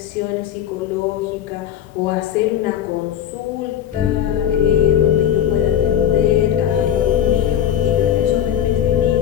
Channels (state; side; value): quieter; right; 9.9 dB